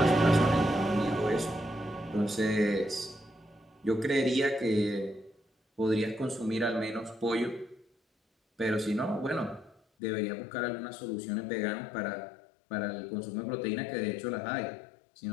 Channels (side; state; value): right; drops out; at 9.8 s